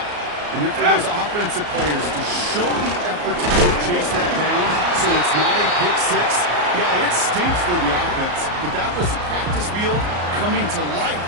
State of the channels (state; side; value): late; left; 34 ms